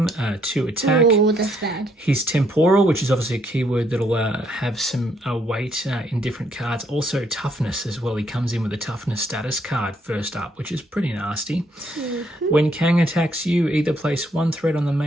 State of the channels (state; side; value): normal; both; correlation 0.71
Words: 2 attack. Oh, that's bad. His temporal, which is obviously a keyword that'll have some weight in different cards. Also toughness as well. He comes in with a toughness status card first up, which is pretty nasty. When Kang attacks you, either place 1 threat on the